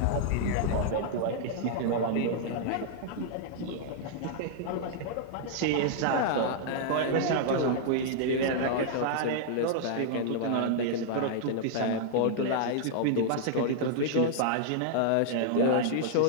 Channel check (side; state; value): both; different; correlation -0.01